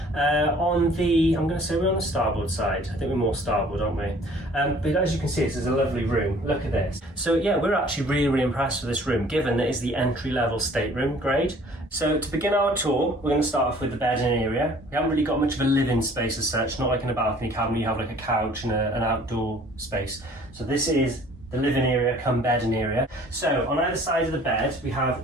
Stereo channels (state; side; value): normal; both; correlation 0.54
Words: going to say we're on the starboard side. I think we're more starboard, aren't we? But as you can see, this is a lovely room. Look at this. So yeah, we're actually really impressed with this room, given that it's the entry-level stateroom grade. So to begin our tour, we're going to start off with the bedding area. We haven't really got much of a living space as such, not like in a balcony cabin, you have like a couch and an outdoor space. So this is the living area come bedding area. So on either side of the bed, we